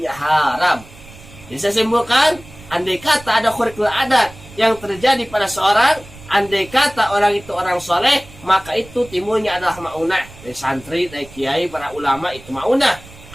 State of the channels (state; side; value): noise; right; rumble, 20 dB below the sound